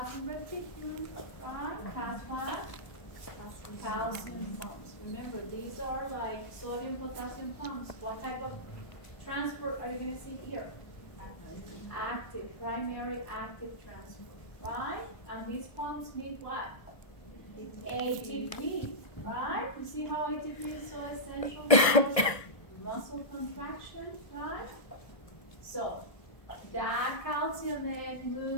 reticulum, right, has what? Calcium pumps. Remember, these are like sodium potassium pumps. What type of transport are you going to see here? Active, primary active transport, right? And these pumps need what? ATP, right? You see how ATP is so essential for muscle contraction, right? So, that calcium then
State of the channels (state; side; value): late; right; 1.6 ms